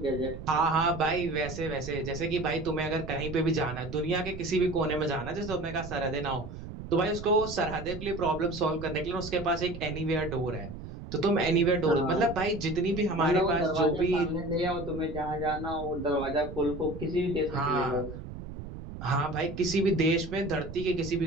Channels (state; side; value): noise; right; rumble, 11 dB below the sound